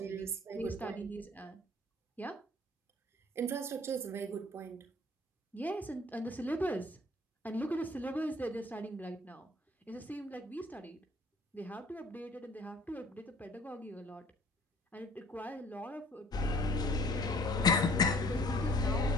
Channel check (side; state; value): both; normal; correlation 0.54